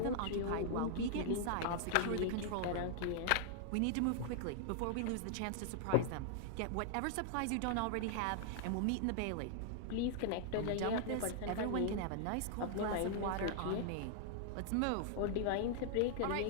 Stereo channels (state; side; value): different; both; correlation -0.01